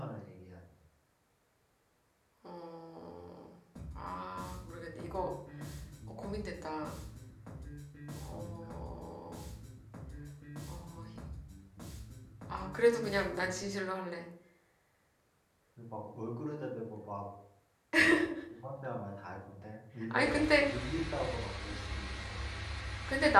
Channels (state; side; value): identical; both; correlation 1.00